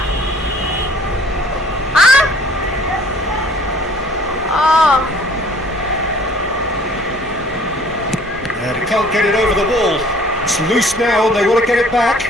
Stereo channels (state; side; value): normal; both; correlation 0.54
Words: Hah? Oh. And he can't get it over the wall. It's loose now and they want to get it back.